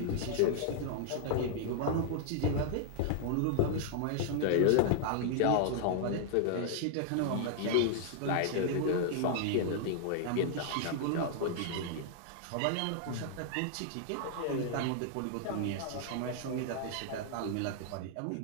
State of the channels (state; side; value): different; both; correlation -0.01